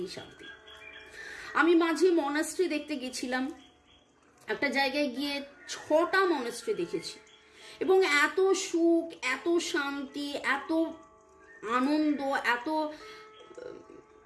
শান্তি। আমি মাঝে মনাস্ট্রি দেখতে গেছিলাম, একটা জায়গায় গিয়ে 6টা মনাস্ট্রি দেখেছি, এবং এত সুখ, এত শান্তি, এত আনন্দ, এত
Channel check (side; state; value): both; identical; correlation 1.00